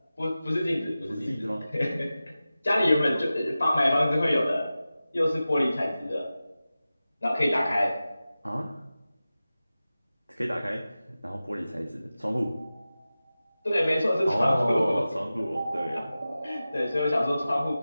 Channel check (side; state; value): both; inverted; correlation -0.95